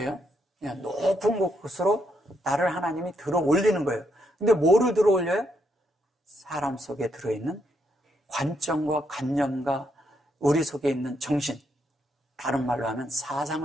그냥 높은 곳으로 나를 하나님이 들어 올리는 거예요. 근데 뭐를 들어 올려요? 사람 속에 들어있는 관점과 관념과 우리 속에 있는 정신, 다른 말로 하면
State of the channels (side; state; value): both; normal; correlation 0.77